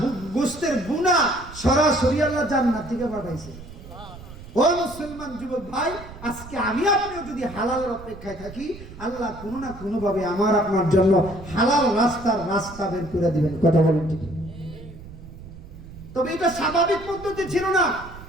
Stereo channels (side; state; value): right; noise; rumble, 16 dB below the sound